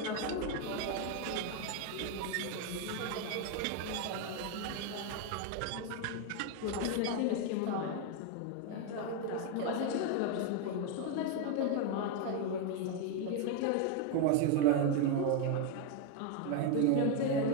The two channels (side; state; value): both; different; correlation 0.01